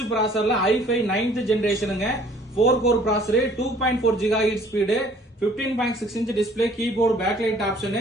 ப்ராசர்ல i5 9th ஜெனரேஷனுங்க 4 core processor 2.4 GHz speed 15.6 inch display keyboard backlight option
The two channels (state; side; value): normal; both; correlation 0.56